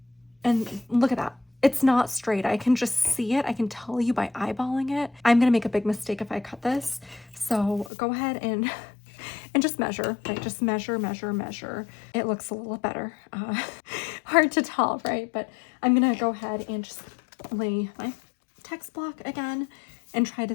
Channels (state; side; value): drops out; right; at 7.9 s